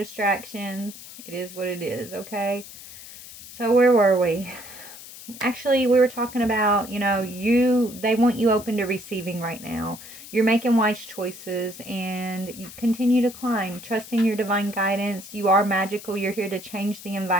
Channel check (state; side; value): noise; left; hiss, 15 dB below the sound